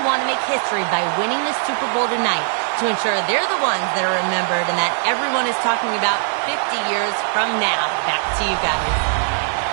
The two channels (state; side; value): silent; left; 66 dB below the other